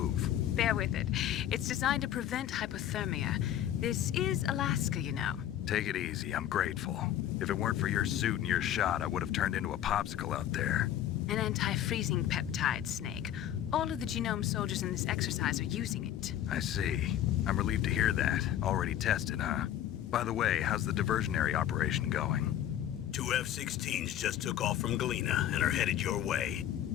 Bear with it. It's designed to prevent hypothermia. This is Alaska, you know. Take it easy, I'm grateful. If it weren't for your suit and your shot, I would have turned into a popsicle out there. An anti-freezing peptide, Snake. All of the genome soldiers in this exercise are using it. I see. I'm relieved to hear that. Already tested, huh? By the way, how's the diversionary operation going? Two F-16s just took off from Galena and are headed your way.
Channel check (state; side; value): quieter; right; 11.3 dB